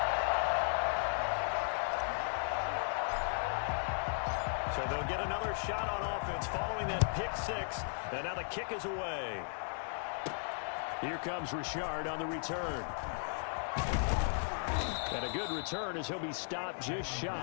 So they'll get another shot on offense following that pick 6. And now the kick is away. Here comes Richard on the return. And a good return as he'll be stopped just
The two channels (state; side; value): silent; right; digital silence